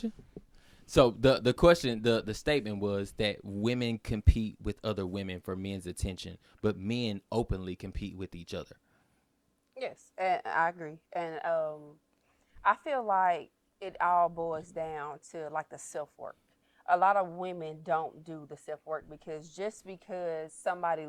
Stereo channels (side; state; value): both; identical; correlation 1.00